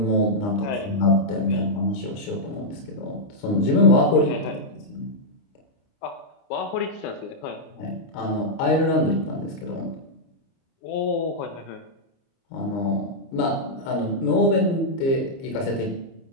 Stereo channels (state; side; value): late; right; 30 ms